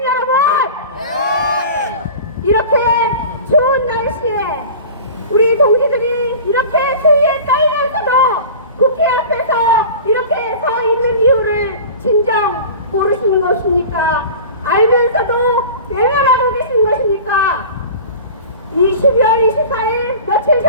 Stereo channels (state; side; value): inverted; both; correlation -0.37